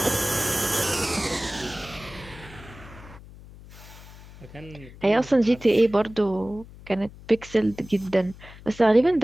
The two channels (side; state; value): left; noise; hum, 19 dB below the sound